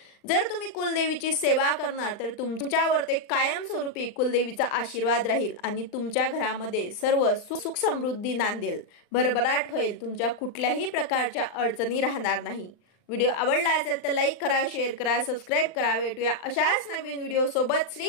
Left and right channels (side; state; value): right; late; 39 ms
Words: जर तुम्ही कुलदेवीची सेवा करणार तर तुमच्यावर ते कायमस्वरूपी कुलदेवीचा आशीर्वाद राहील आणि तुमच्या घरामध्ये सर्व सुख समृद्धी नांदेल, भरभराट होईल, तुमच्या कुठल्याही प्रकारच्या अडचणी राहणार नाही। व्हिडिओ आवडला असेल तर लाईक करा, शेअर करा, सबस्क्राईब करा। भेटूया अशाच नवीन व्हिडिओ सोबत।